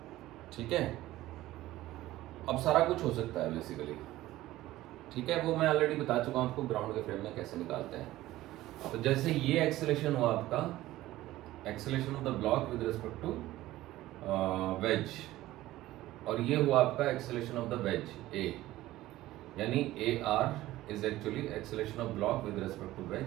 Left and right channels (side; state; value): left; quieter; 16.1 dB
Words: ठीक है। अब सारा कुछ हो सकता है बेसिकली, ठीक है, वो मैं ऑलरेडी बता चुका हूं आपको ग्राउंड के फ्रेम में कैसे निकालते हैं। तो जैसे ये एक्सेलेरेशन हुआ आपका, acceleration of the block with respect to wedge, और ये हुआ आपका acceleration of the wedge a, यानी AR is actually acceleration of block with respect to